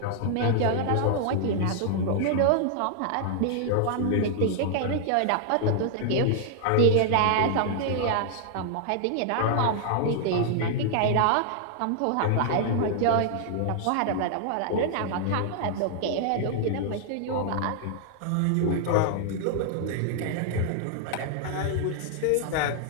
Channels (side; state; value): both; different; correlation 0.00